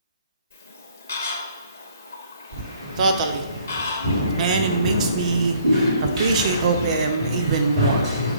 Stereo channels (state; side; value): inverted; both; correlation -0.60